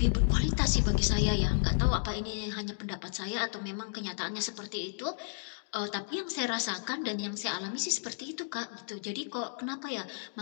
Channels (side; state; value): right; silent; digital silence